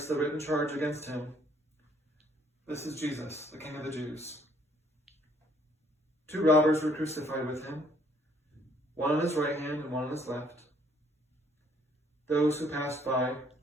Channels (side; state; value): both; normal; correlation 0.64